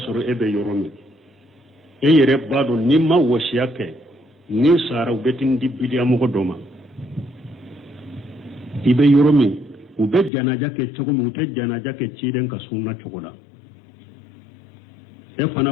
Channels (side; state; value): right; drops out; at 10.3 s